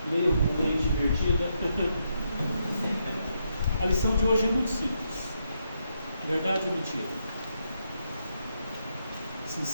leiam com mente divertida. A lição de hoje é muito simples. Verdade ou mentira?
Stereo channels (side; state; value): both; inverted; correlation -0.80